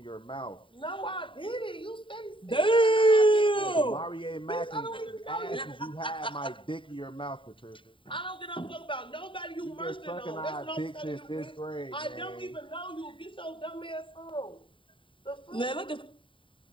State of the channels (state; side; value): late; right; 0.25 ms